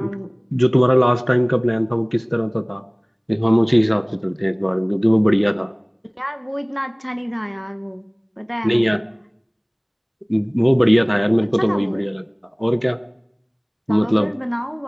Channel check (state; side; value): identical; both; correlation 1.00